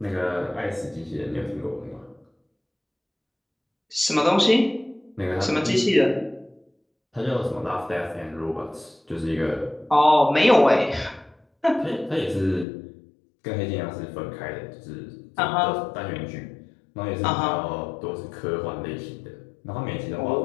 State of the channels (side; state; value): right; drops out; at 12.7 s